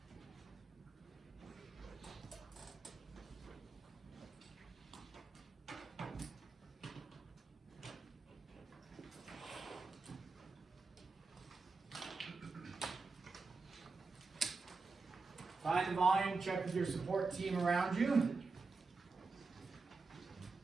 Find the volume, check with your support team around you.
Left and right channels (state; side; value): quieter; left; 4.2 dB